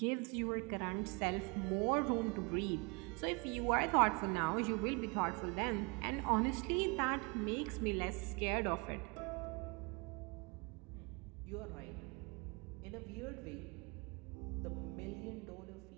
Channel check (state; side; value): quieter; left; 30.9 dB